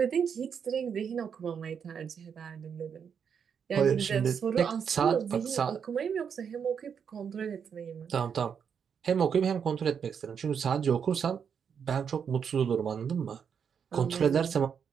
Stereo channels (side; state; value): left; quieter; 7.2 dB